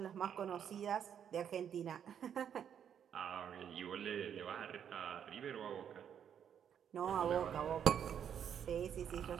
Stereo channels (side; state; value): left; quieter; 8.6 dB